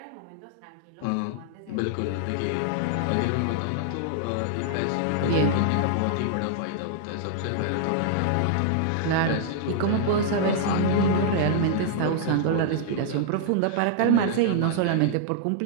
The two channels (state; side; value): different; both; correlation -0.01